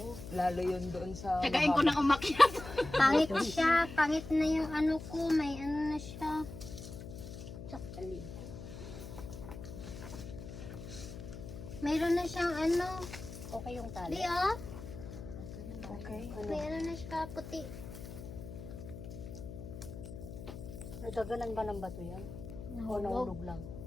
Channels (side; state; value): left; noise; hum, 11 dB below the sound